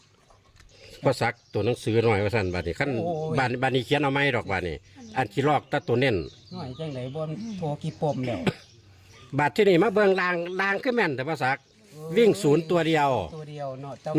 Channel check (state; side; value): identical; both; correlation 1.00